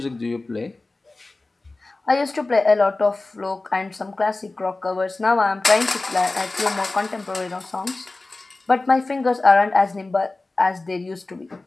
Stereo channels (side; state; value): right; quieter; 3.2 dB